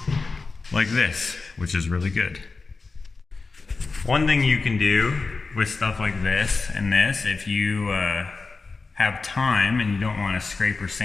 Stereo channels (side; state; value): right; quieter; 4.1 dB